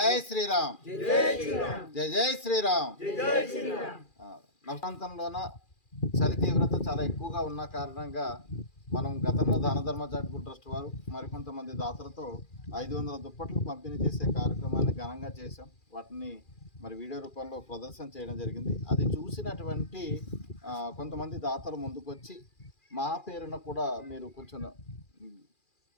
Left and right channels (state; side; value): late; right; 2.4 ms